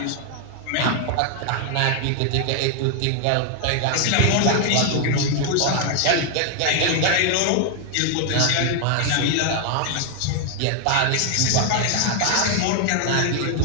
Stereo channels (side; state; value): both; different; correlation 0.00